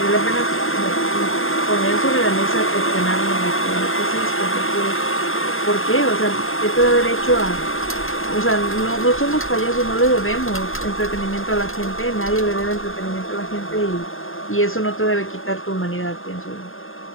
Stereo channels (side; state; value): right; late; 0.60 ms